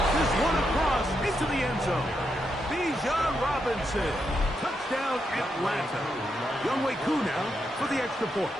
this one across into the end zone. Bijan Robinson. Touchdown, Atlanta. Younghoe Koo now for the extra point.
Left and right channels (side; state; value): both; normal; correlation 0.82